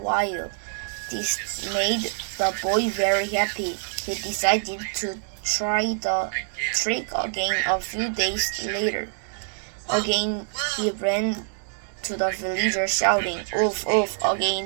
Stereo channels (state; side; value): silent; left; digital silence